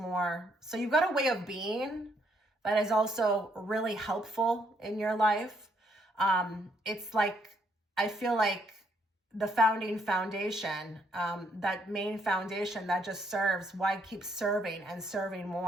So you've got a way of being that is also really helpful in your life. It's like, I feel like the foundation, that main foundation that just serves, why keep serving and serving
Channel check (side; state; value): both; normal; correlation 0.71